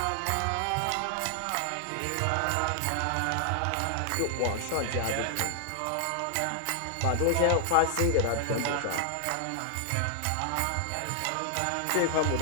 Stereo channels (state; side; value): different; both; correlation 0.00